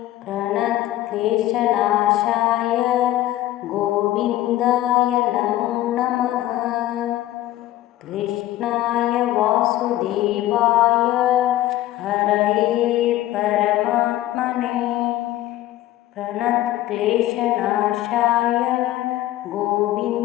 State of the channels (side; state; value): right; quieter; 14.8 dB